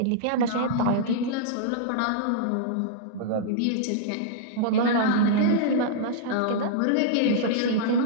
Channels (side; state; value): both; different; correlation -0.02